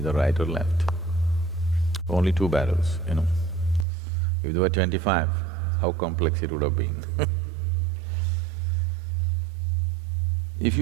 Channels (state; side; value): drops out; left; at 3.9 s